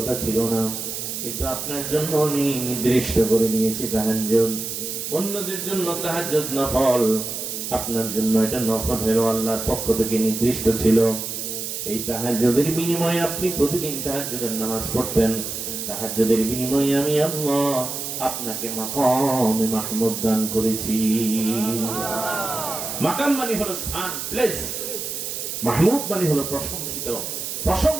ছিল না, কিন্তু আপনার জন্য আমি নির্দিষ্ট করে নিয়েছি তাহাজ্জুদ। অন্যদের জন্য তাহাজ্জুদ নফল, আপনার জন্য এটা নফল হলো, আল্লাহর পক্ষ থেকে নির্দিষ্ট ছিল। এই তাহাজ্জুদের বিনিময়ে আপনি প্রতিদিন তাহাজ্জুদের নামাজ পড়তেন। তাহাজ্জুদের বিনিময়ে আমি আল্লাহ আপনাকে মাকামে মাহমুদ দান করেছি। মাকাম মানে হলো স্থান, প্লেস। মাহমুদ মানে হলো প্রশংসিত,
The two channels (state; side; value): noise; right; hiss, 5 dB below the sound